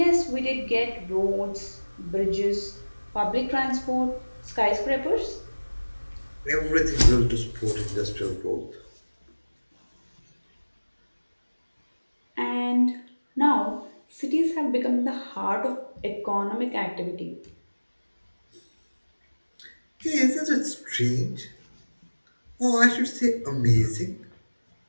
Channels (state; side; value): inverted; both; correlation -1.00